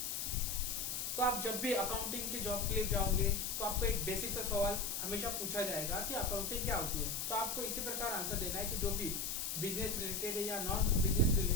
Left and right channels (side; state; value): left; noise; hiss, 2 dB below the sound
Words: तो आप जब भी अकाउंटिंग की जॉब के लिए जाओगे तो आपको एक बेसिक सा सवाल हमेशा पूछा जाएगा कि अकाउंटिंग क्या होती है। तो आपको इसी प्रकार आंसर देना है कि जो भी बिजनेस रिलेटेड है या नॉन बिजनेस